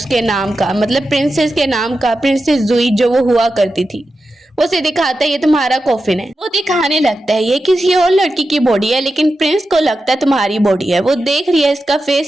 नाम का, मतलब प्रिंसेस के नाम का, प्रिंसेस जुई जो वो हुआ करती थी। वो उसे दिखाता है ये तुम्हारा कॉफिन है। वो दिखाने लगता है ये किसी और लड़की की बॉडी है, लेकिन प्रिंस को लगता है तुम्हारी बॉडी है। वो देख रही है इसका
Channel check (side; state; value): both; normal; correlation 0.91